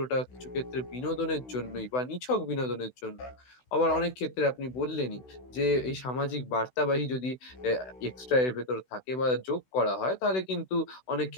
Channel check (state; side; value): late; right; 16 ms